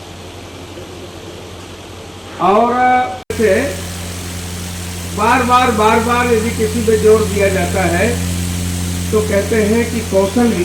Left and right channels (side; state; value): both; identical; correlation 1.00